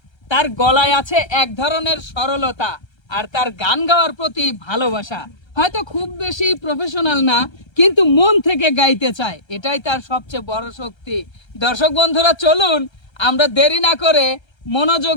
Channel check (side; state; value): right; late; 1.3 ms